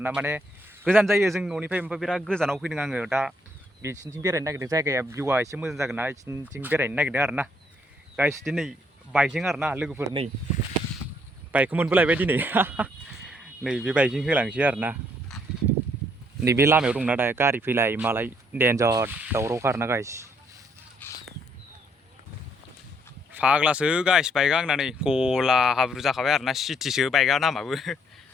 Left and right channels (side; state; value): both; normal; correlation 0.69